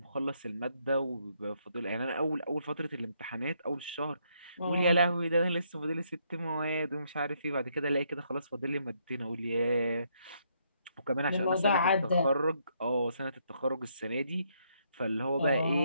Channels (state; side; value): inverted; both; correlation -0.73